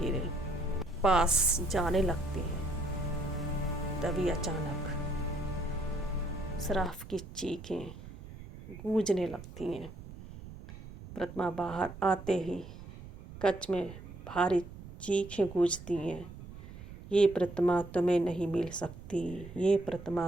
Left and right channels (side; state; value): right; noise; rumble, 14 dB below the sound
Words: पास जाने लगते हैं। तभी अचानक शराफ की चीखें गूंजने लगती हैं। प्रतिमा बाहर आते ही कच्छ में भारी चीखें गूंजती हैं। ये प्रतिमा तुम्हें नहीं मिल सकती, ये